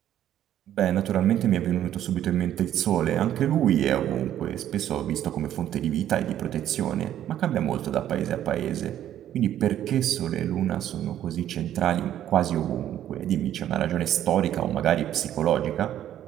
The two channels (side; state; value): left; quieter; 11.4 dB